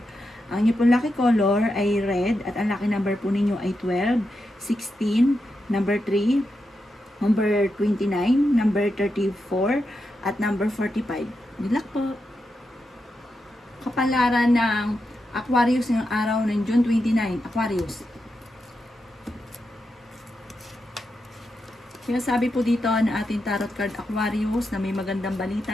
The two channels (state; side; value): normal; both; correlation 0.87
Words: Ang inyo pong lucky color ay red at ang lucky number po ninyo ay 12, 16, number 3, number 29, number 34, at number 45. Good luck po! Kapalaran ng Aquarius ng araw ng June 29, Aquarius. Kaya sabi po dito na ating tarot card Aquarius na may magandang